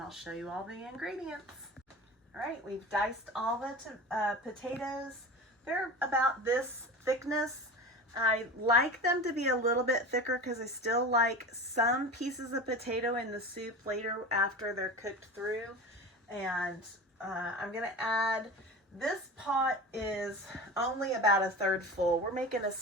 show you all the ingredients. All right, we've diced all the potatoes. They're about this thickness. I like them to be a little bit thicker because I still like some pieces of potato in the soup later after they're cooked through. And I'm going to add, this pot is only about a third full. We're making a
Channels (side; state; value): both; normal; correlation 0.32